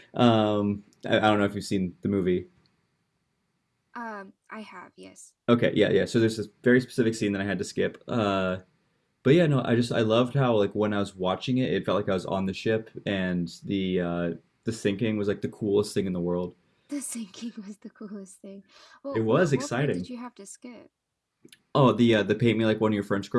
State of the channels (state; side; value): identical; both; correlation 1.00